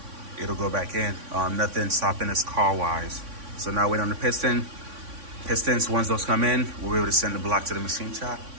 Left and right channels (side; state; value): left; late; 3.6 ms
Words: it'll go back in. Nothing stopping us car-wise. So now wait on the pistons. Once those come in, we'll be able to send the block to the machine shop